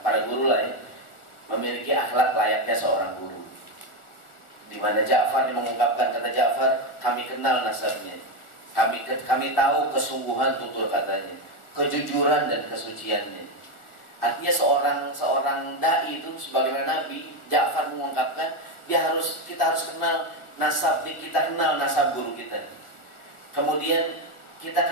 guru lah ya, memiliki akhlak layaknya seorang guru. Di mana Ja'far mengungkapkan, kata Ja'far, kami kenal nasabnya. Kami tahu kesungguhan tutur katanya, kejujuran dan kesuciannya. Artinya seorang dai itu sebagaimana Nabi, Ja'far mengungkapkan, kita harus kenal nasab, kita kenal nasab guru kita. Kemudian kita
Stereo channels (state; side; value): late; right; 1.4 ms